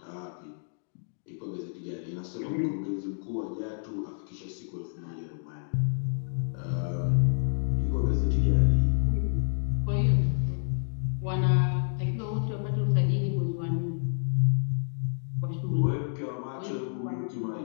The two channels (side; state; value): right; silent; digital silence